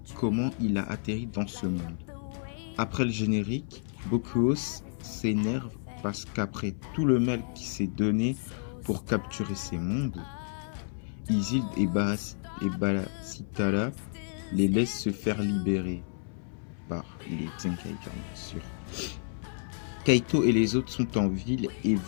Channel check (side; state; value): right; silent; 57 dB below the other